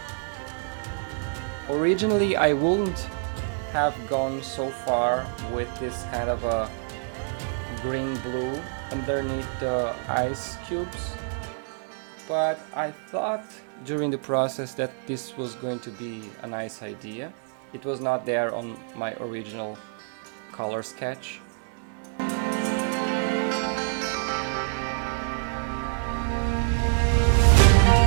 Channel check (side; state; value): left; silent; digital silence